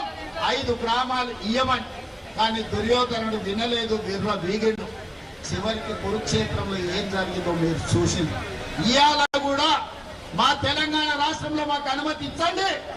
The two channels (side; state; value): both; identical; correlation 1.00